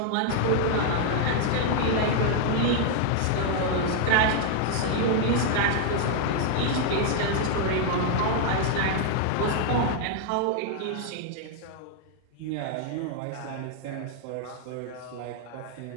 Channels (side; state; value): both; different; correlation 0.00